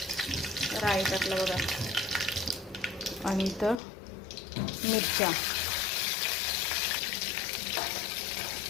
राई टाकला बघा, आणि इथं मिरच्या.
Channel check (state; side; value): drops out; right; at 3.8 s